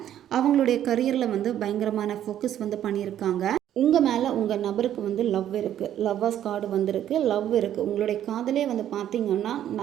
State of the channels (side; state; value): left; quieter; 11.1 dB